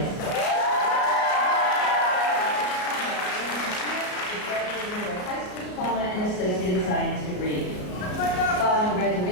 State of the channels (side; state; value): right; late; 33 ms